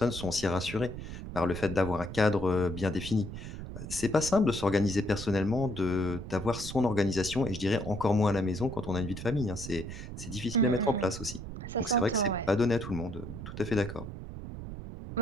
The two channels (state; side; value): noise; right; rumble, 9 dB below the sound